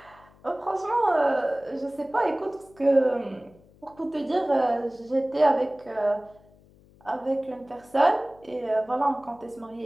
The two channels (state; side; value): noise; left; hum, 27 dB below the sound